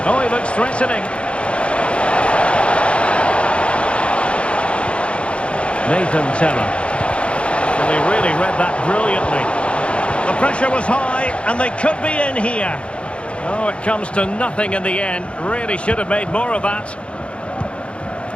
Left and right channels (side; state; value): right; late; 0.059 ms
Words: Oh, he looks threatening. Nathan Teller. Well, he really read that brilliantly. The pressure was high, and they could be in here. Oh, it comes to nothing in the end. Really should have made more of that.